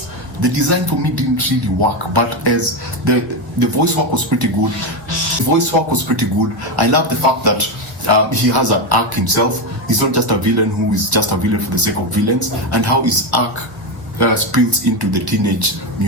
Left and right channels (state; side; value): normal; both; correlation 0.11